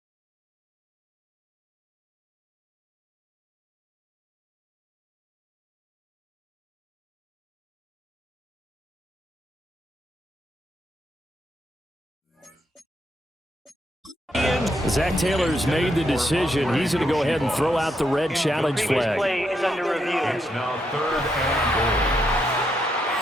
Zach Taylor's made the decision. He's going to go ahead and throw out the red challenge flag. Play is under review. It's now 3rd and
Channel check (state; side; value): normal; both; correlation 0.79